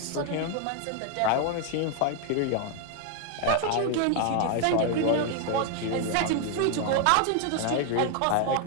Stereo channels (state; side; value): different; both; correlation 0.00